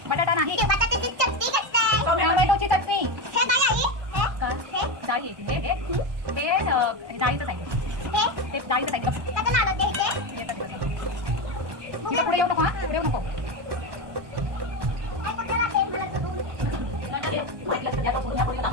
बटाटा नाही. बटाट्याची चटणी करतोय. टोमॅटोची चटणी. हे काय आहे? का? हे डाळी आहे. ते डाळीचं साईड. ते डाळीचं साईड. त्याचं नाव होते हे. पुढे येऊ नको. पुढे येऊ नको.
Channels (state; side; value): late; left; 1.2 ms